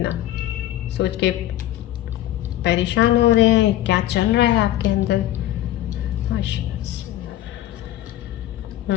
सोच के परेशान हो रहे हैं, क्या चल रहा है आपके अंदर।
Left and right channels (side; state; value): right; quieter; 13.8 dB